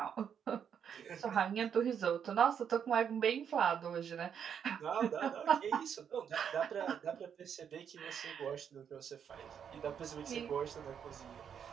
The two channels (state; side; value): quieter; left; 8.0 dB